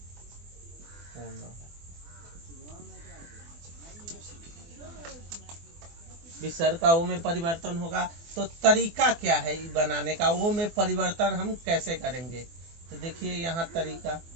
होना। विसर्ग का ओ में परिवर्तन होगा। तो तरीका क्या है बनाने का? ओ में परिवर्तन हम कैसे करेंगे? तो देखिए यहाँ तरीका,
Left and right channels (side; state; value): left; late; 24 ms